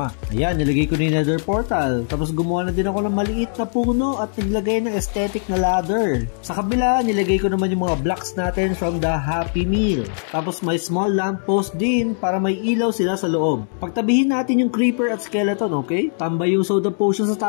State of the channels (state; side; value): silent; right; digital silence